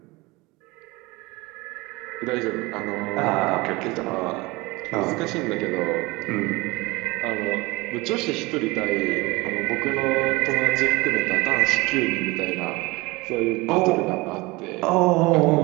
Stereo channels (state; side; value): quieter; left; 23.0 dB